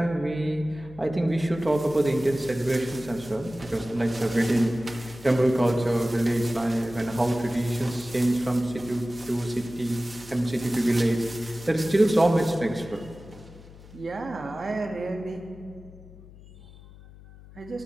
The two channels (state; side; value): noise; left; hum, 20 dB below the sound